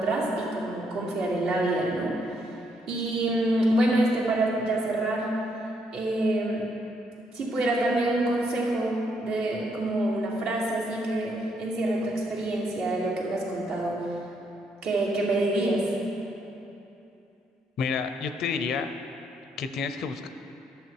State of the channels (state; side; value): normal; both; correlation 0.74